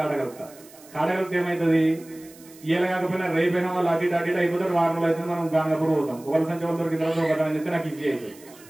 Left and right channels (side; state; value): right; noise; hiss, 23 dB below the sound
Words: ఏమవుతుంది ఇయ్యాల కాకపోయినా రేపైనా వాళ్ళు అటు ఇటు అయిపోతారు వారం రోజులు అయితే మనం గాంగాపూర్ పోతాం ఒకరి సంచి వాళ్ళు దొరికిన తర్వాత ఒకటని చెప్తే నాకు ఈజీ అవుతుంది